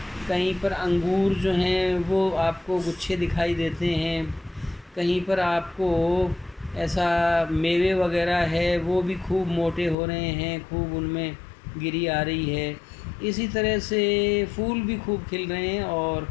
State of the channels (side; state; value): right; drops out; at 10.0 s